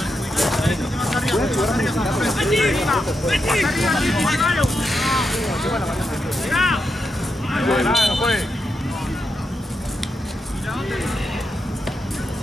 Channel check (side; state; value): both; normal; correlation 0.85